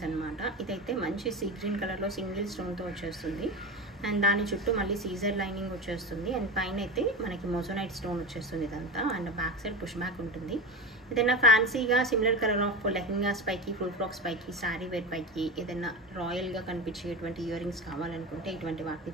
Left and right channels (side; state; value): both; normal; correlation 0.24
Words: అనమాట. ఇదైతే మంచి సీ గ్రీన్ కలర్లో సింగిల్ స్టోన్తో వచ్చేస్తుంది. అండ్ దాని చుట్టూ మళ్ళీ సీజర్ లైనింగ్ వచ్చేస్తుంది. అండ్ పైన అయితే మనకి మొజనైట్ స్టోన్ వచ్చేస్తుంది ఇదంతా. And back side push back ఉంటుంది. ఏదైనా ఫ్యాన్సీగా సిమిలర్ కలర్ ఆఫ్ లెహెంగాస్ పైకి ఫుల్ ఫ్రాక్స్ పైకి శారీ వేర్ పైకి ఏదైనా రాయల్గా కనిపించేటువంటి ఇయర్ రింగ్స్ కావాలనుకుంటే ఇటువంటి వాటిని